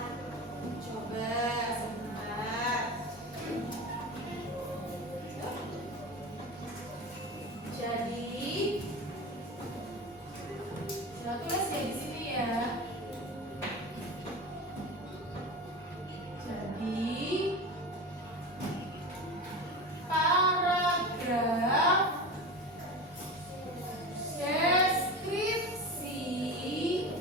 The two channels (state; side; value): normal; both; correlation 0.28